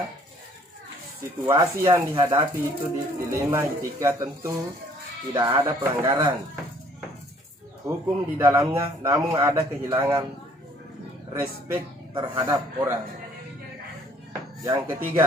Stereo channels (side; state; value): both; normal; correlation 0.59